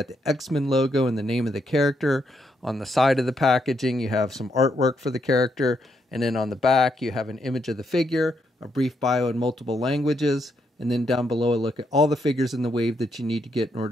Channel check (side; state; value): both; normal; correlation 0.77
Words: the X-Men logo and the name of the character. On the side of the packaging you have some artwork for the character. And then on the back you have an image of the figure, a brief bio in multiple languages, and then down below a look at all the figures in the wave that you need to get in